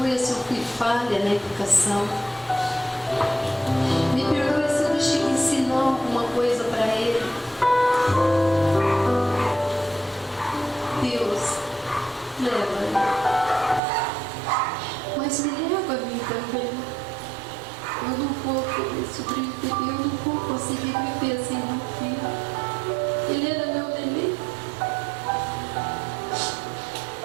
se eu fui falha na educação. Me perdoe se eu deixei de ensinar alguma coisa para ele. Deus, leva-me. Mas me leva a mim também. Eu não vou poder sobreviver, eu não vou conseguir viver sem meu filho. Ele era meu neném.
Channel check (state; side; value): drops out; left; at 13.8 s